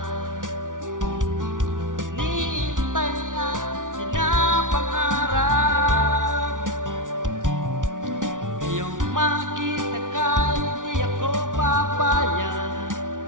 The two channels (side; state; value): left; late; 0.88 ms